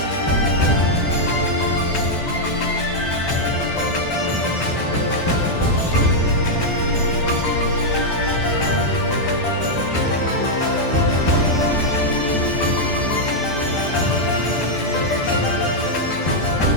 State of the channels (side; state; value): right; late; 12 ms